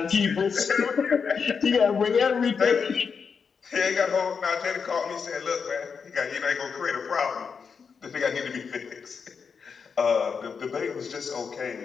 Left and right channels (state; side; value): quieter; right; 5.9 dB